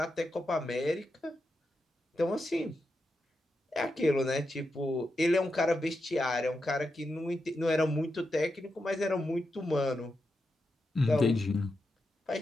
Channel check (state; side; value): normal; both; correlation 0.87